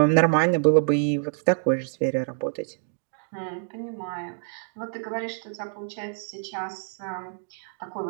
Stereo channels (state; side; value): silent; left; digital silence